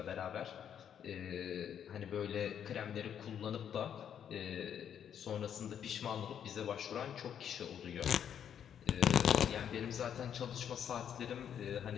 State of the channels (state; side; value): quieter; right; 8.9 dB